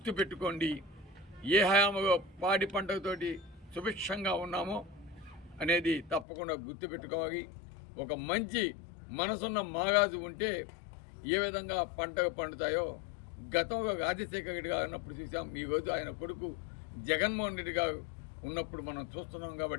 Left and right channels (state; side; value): drops out; right; at 6.2 s